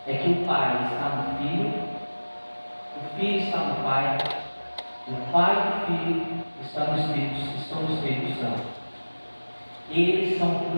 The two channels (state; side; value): inverted; both; correlation -1.00